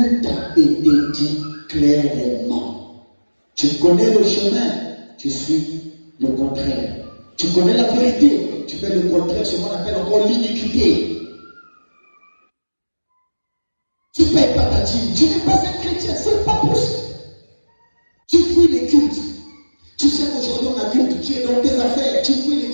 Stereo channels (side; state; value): both; inverted; correlation -1.00